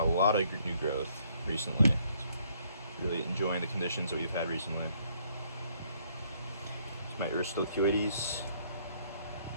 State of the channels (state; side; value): inverted; both; correlation -0.67